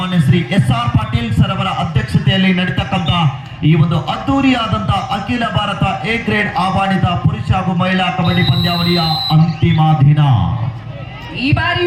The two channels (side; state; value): both; identical; correlation 1.00